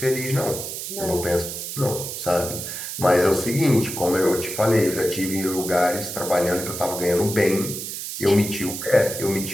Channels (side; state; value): right; noise; hiss, 7 dB below the sound